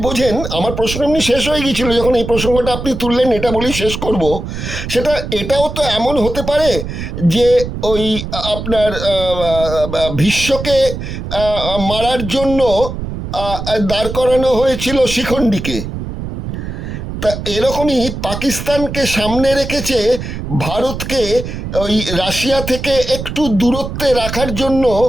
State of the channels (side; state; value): right; noise; rumble, 7 dB below the sound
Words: বোঝেন। আমার প্রশ্ন এমনি শেষ হয়ে গিয়েছিল, যখন এই প্রসঙ্গটা আপনি তুললেন, এটা বলেই শেষ করব। সেটা এটাও তো এমন হতে পারে যে ওই আপনার ভীষ্মকে মারার জন্য দাঁড় করানো হয়েছিল শিখণ্ডীকে, তা এরকমই পাকিস্তানকে সামনে রেখেছে ভারতকে ওই রাশিয়া থেকে একটু দূরত্বে রাখার জন্য।